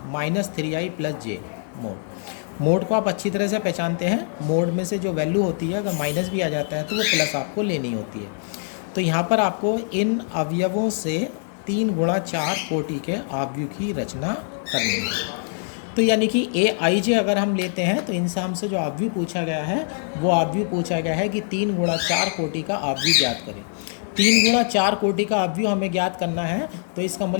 -3i + j मोड। मोड को आप अच्छी तरह से पहचानते हैं, मोड में से जो वैल्यू होती है अगर माइनस भी आ जाता है तो वो प्लस आपको लेनी होती है। तो यहाँ पर आपको इन अवयवों से 3 × 4 कोटि के अवयव की रचना करनी है। तो यानी कि AIJ अगर हम लेते हैं तो इनसे हमसे जो अवयव पूछा गया है वो अवयव पूछा गया है कि 3 × 4 कोटि का अवयव ज्ञात करें। 3 गुणा 4 कोटि का अवयव हमें ज्ञात करना है, तो इसका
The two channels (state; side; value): silent; right; digital silence